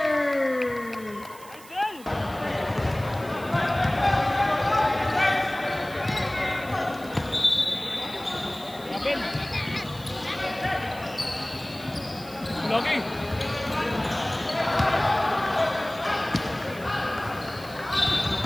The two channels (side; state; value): right; noise; hiss, 20 dB below the sound